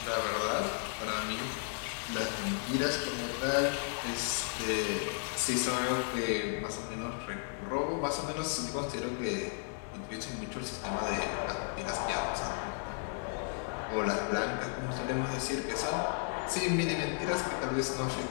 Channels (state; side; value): silent; right; 55 dB below the other